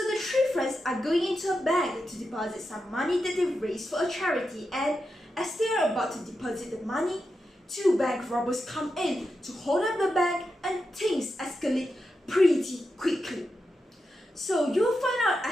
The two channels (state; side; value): normal; both; correlation 0.88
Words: the three friends are going into a bank to deposit some money that they've raised for a charity, and as they are about to deposit the money, two bank robbers come in to hold up the bank and things escalate pretty quickly. So you'll find out